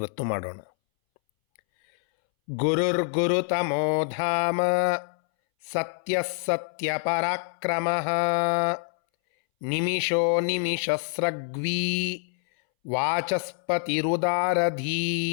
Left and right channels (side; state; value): right; silent; 61 dB below the other